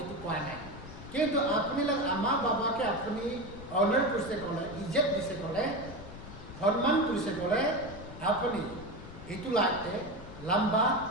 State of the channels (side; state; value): left; noise; rumble, 14 dB below the sound